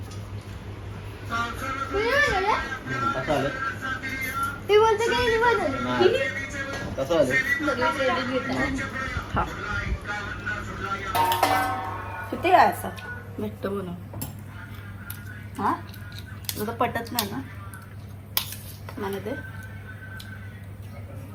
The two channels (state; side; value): identical; both; correlation 1.00